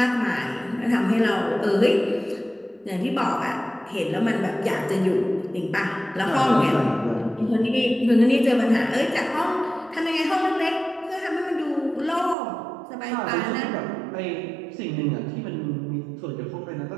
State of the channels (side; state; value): left; drops out; at 12.4 s